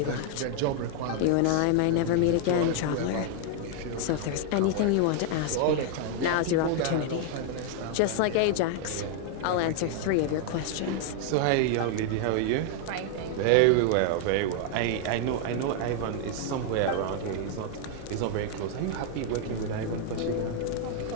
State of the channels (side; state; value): both; different; correlation 0.00